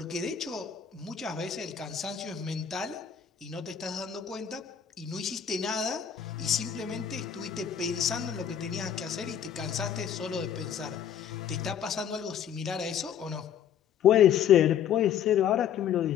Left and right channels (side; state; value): right; quieter; 8.7 dB